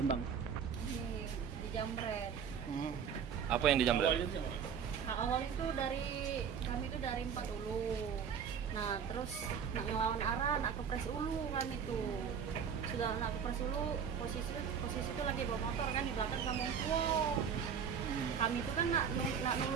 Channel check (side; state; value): left; quieter; 7.3 dB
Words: Dijamret. Apa yang dijamret? Awal itu kami itu dari 4 Ulu. Nah terus nak ngelawan arah, nak kepres Ulu kami tuh. Sudah nak kepres Ulu, posisi itu lagi bawa motor kan di belakang sama tua. Kami itu kan nak